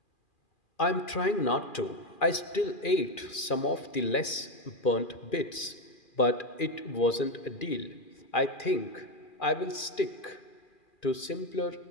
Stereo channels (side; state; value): right; late; 2.4 ms